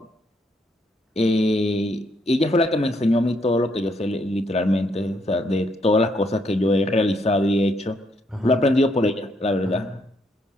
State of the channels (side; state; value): both; normal; correlation 0.74